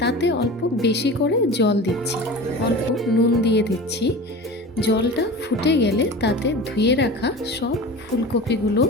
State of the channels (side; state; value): both; normal; correlation 0.34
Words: তাতে অল্প বেশি করে জল দিচ্ছি, অল্প নুন দিয়ে দিচ্ছি। জলটা ফুটে গেলে তাতে ধুয়ে রাখা সব ফুলকপিগুলো